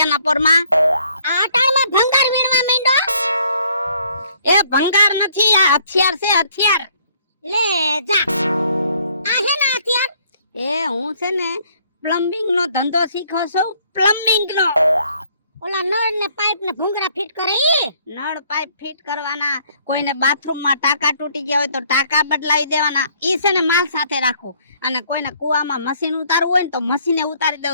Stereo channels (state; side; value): inverted; both; correlation -0.63